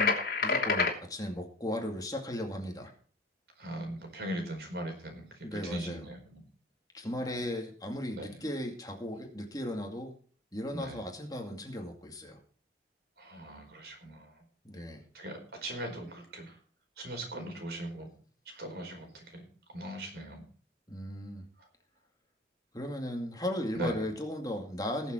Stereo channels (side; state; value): both; normal; correlation 0.43